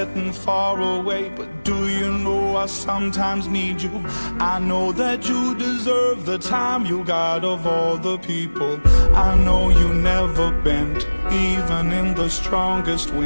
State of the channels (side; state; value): both; inverted; correlation -1.00